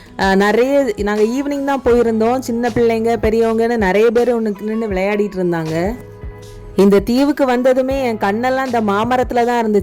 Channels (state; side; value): identical; both; correlation 1.00